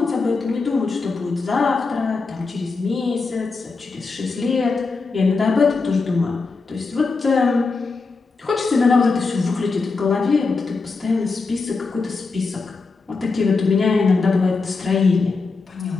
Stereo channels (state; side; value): quieter; right; 4.2 dB